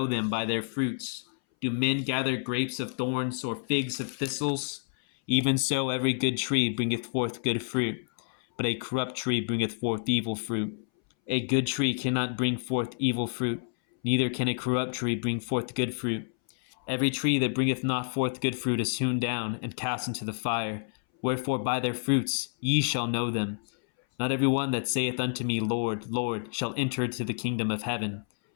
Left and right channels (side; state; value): right; silent; 59 dB below the other